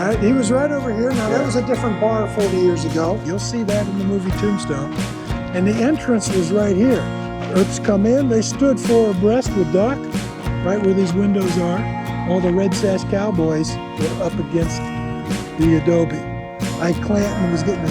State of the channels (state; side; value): identical; both; correlation 1.00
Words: right, he was right over here. Now that was a different bar 40 years ago. You'll see that in the movie Tombstone. And the entrance was right here. Earths come in, they stood four abreast with Doc, right where these windows are. All the Red Sash Cowboys were up against the adobe. Ike Clanton was getting